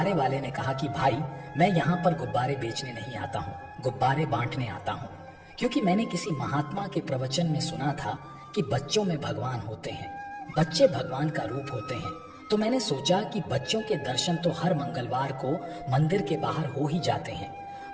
वाले ने कहा कि भाई मैं यहाँ पर गुब्बारे बेचने नहीं आता हूँ, गुब्बारे बांटने आता हूँ, क्योंकि मैंने किसी महात्मा के प्रवचन में सुना था कि बच्चों में भगवान होते हैं, बच्चे भगवान का रूप होते हैं। तो मैंने सोचा कि बच्चों के दर्शन तो हर मंगलवार को मंदिर के बाहर हो ही जाते हैं,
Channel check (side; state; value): both; identical; correlation 1.00